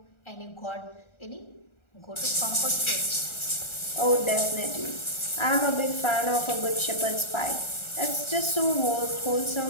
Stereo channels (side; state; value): right; late; 1.4 ms